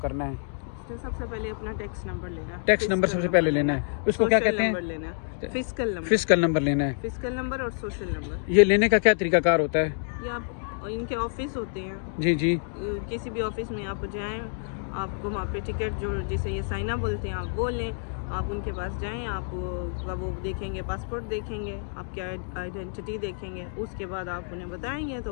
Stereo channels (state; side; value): silent; right; digital silence